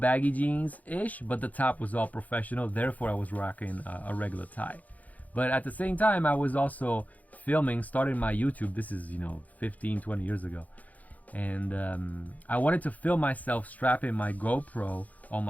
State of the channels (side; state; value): right; late; 0.077 ms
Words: baggy jeans-ish, but the top was all professional, therefore I was rocking a regular tie. But at the same time, I was also starting my YouTube. This is 15-20 years ago, and I wanted to film myself strapping my GoPro on